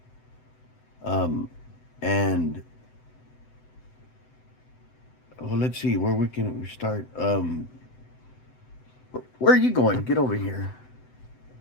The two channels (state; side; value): late; right; 7.9 ms